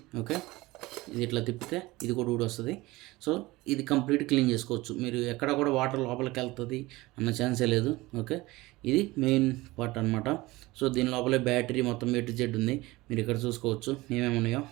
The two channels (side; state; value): left; quieter; 20.3 dB